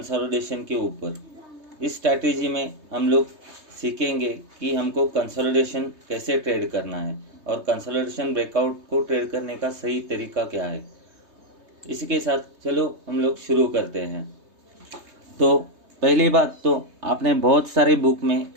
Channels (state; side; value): late; left; 3.2 ms